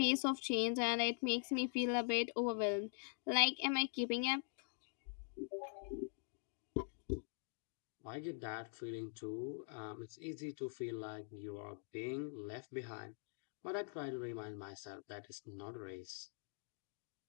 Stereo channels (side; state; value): right; silent; digital silence